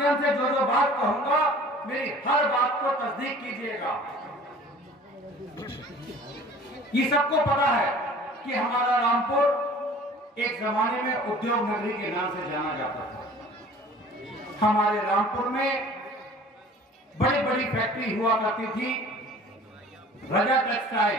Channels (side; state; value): both; normal; correlation 0.47